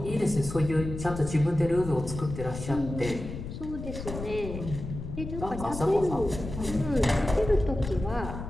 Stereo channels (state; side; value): noise; left; rumble, 8 dB below the sound